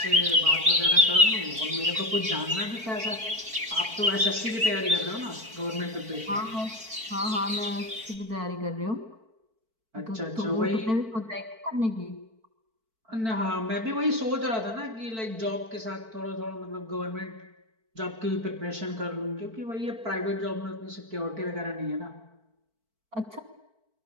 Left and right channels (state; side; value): late; left; 4.5 ms